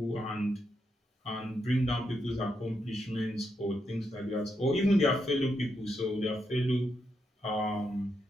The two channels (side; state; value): both; normal; correlation 0.81